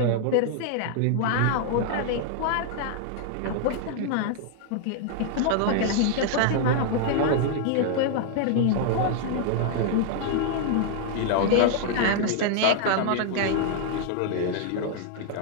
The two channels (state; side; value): different; both; correlation -0.01